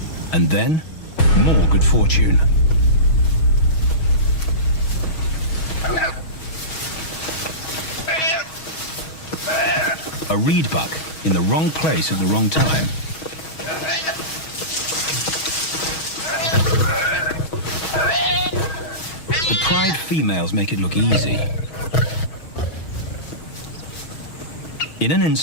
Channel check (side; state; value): right; late; 6.3 ms